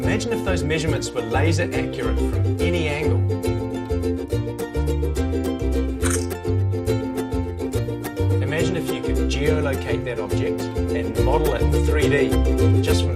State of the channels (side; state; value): both; identical; correlation 1.00